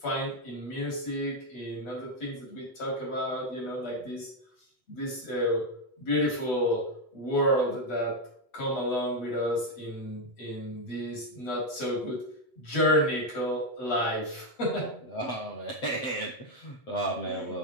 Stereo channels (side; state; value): right; late; 8.2 ms